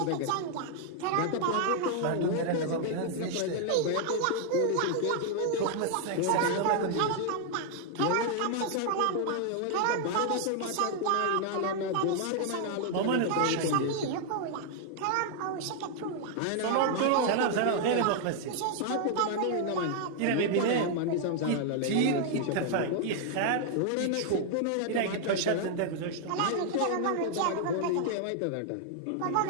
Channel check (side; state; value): both; different; correlation 0.00